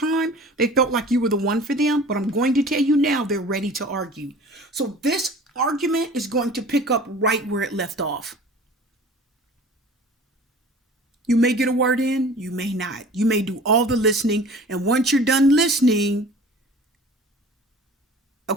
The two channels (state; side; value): normal; both; correlation 0.44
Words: they felt like you were the one for them, but I'm going to tell you now, they're ready to argue. So this argument is going to pick up right where it left off. You may get a word in, you may not. You may do all the listening, and once you're done listening,